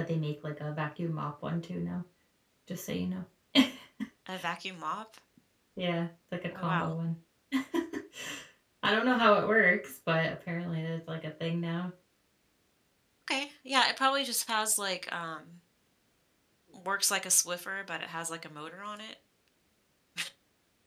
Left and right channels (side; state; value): both; identical; correlation 1.00